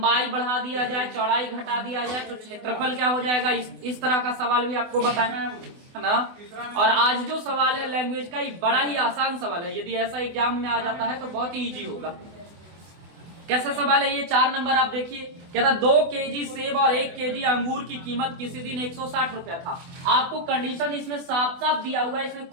बढ़ा दिया जाए, चौड़ाई घटा दिया जाए तो क्षेत्रफल क्या हो जाएगा, इस तरह का सवाल भी आपको बताएं, है ना। और आज जो सवाल है लैंग्वेज का, ये बड़ा ही आसान सवाल है। यदि ऐसा एग्जाम में आ जाता है तो बहुत ही इजी होगा। कैसा सवाल है ये? 4 नंबर आप देखिए, कहता 2 केजी सेब और 1 केजी अंगूर की कीमत किसी दिन 160 रुपया था। आपको कंडीशन इसमें साफ साफ दिया हुआ है, इसमें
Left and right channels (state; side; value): late; left; 24 ms